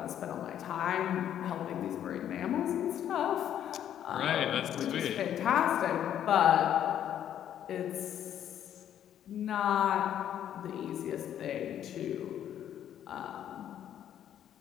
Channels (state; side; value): quieter; right; 10.3 dB